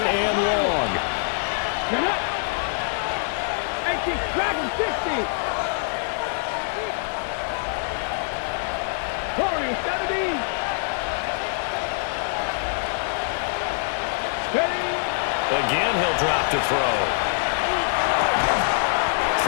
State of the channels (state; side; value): silent; right; digital silence